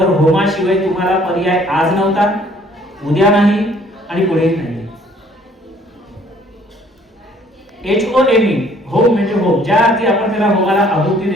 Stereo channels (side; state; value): both; normal; correlation 0.59